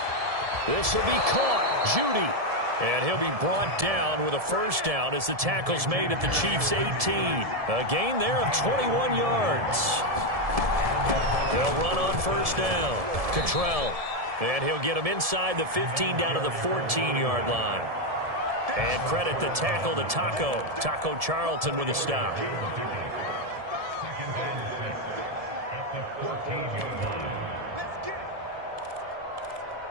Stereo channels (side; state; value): left; late; 1.7 ms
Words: This will be caught. Judy. And he'll be brought down with a 1st down as the tackle's made at the Chiefs' 18. A gain there of 21 yards. They'll run on 1st down. Cottrell. And he'll get him inside the 15 down to the 14-yard line. And credit the tackle to Taco Charlton with a stop. 2nd and 6 at the 14-yard line. Let's get it.